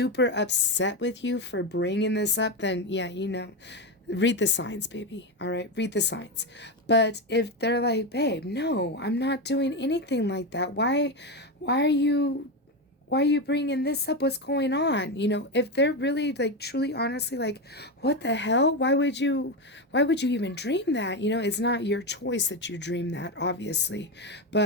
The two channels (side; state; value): both; normal; correlation 0.13